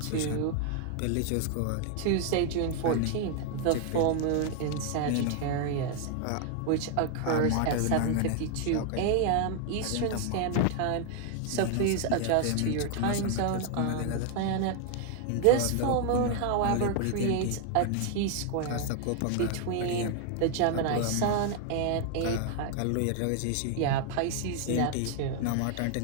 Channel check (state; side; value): different; both; correlation 0.00